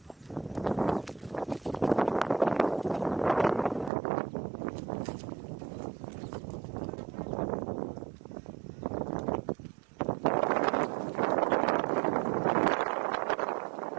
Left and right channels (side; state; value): left; drops out; at 3.9 s